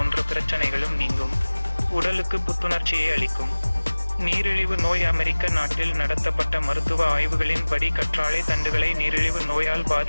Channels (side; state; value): both; inverted; correlation -1.00